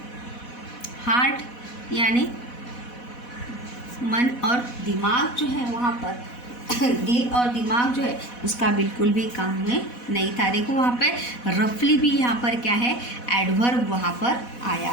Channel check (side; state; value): right; late; 4.1 ms